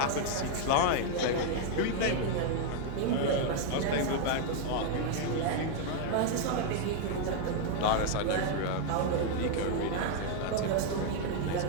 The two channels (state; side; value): different; both; correlation 0.00